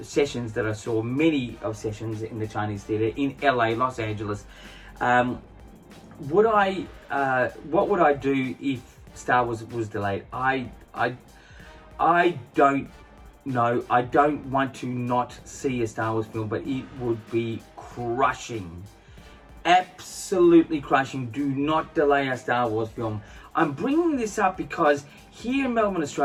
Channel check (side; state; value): both; identical; correlation 1.00